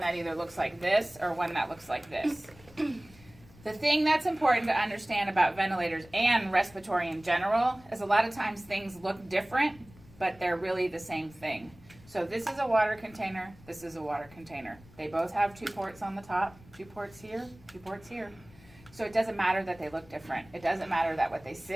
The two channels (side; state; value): left; noise; rumble, 24 dB below the sound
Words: that either looks like this or one that looks like this. The thing that's important to understand about ventilators and respiratory in general is a lot of times things look different, but they're really the same thing. So this is a water container, this is a water container. They both have 2 ports on the top, 2 ports here, 2 ports here. So it doesn't matter that they look different. It doesn't matter that what they